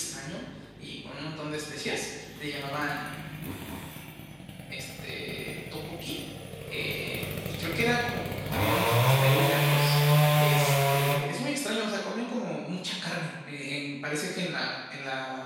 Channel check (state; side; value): identical; both; correlation 1.00